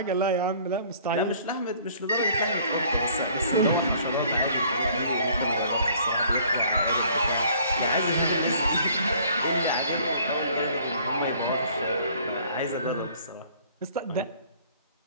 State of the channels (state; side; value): inverted; both; correlation -0.56